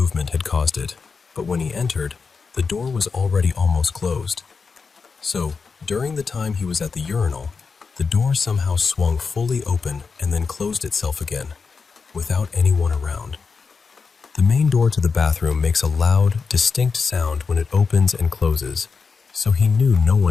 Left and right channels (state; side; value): quieter; right; 5.1 dB